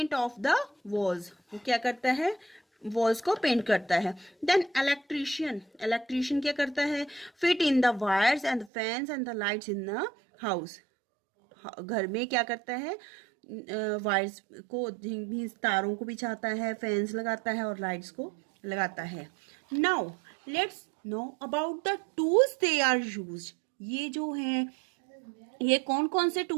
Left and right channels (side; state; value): left; drops out; at 8.7 s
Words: of the walls. वो क्या करता है, वॉल्स को पेंट करता है। देन इलेक्ट्रिशियन क्या करता है, fit in the wires and the fans and the lights in the house. घर में क्या करता है, वायर्स को, तारों को बिछाता है, फैंस लगाता है और लाइट्स को लगाता है। Now let's know about the tools they are used. ये जो हैं ये कौन कौन से